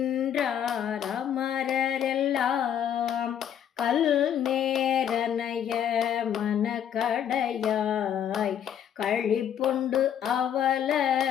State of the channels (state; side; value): quieter; right; 9.4 dB